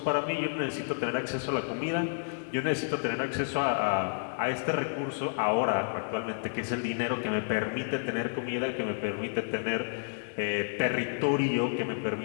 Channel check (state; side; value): silent; right; digital silence